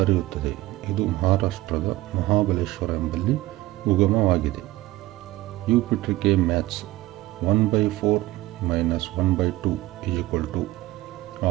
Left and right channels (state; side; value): quieter; left; 17.7 dB